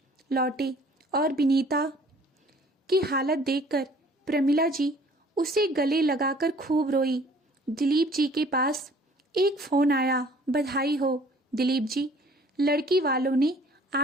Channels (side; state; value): both; normal; correlation 0.54